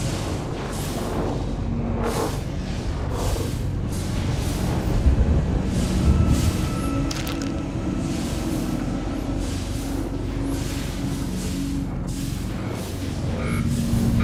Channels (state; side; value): identical; both; correlation 1.00